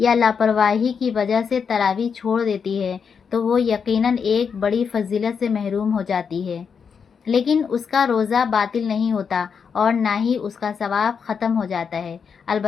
یا لاپرواہی کی وجہ سے تراویح چھوڑ دیتی ہے تو وہ یقیناً ایک بڑی فضیلت سے محروم ہو جاتی ہے، لیکن اس کا روزہ باطل نہیں ہوتا اور نہ ہی اس کا ثواب ختم ہو جاتا ہے۔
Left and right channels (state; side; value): quieter; right; 6.3 dB